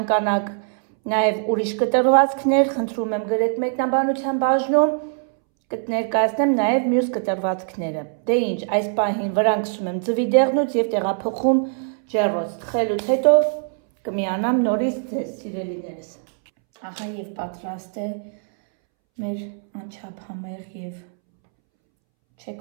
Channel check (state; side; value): silent; left; 64 dB below the other